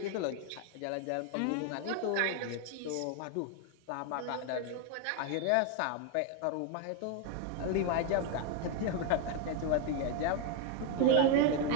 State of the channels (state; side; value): different; both; correlation 0.01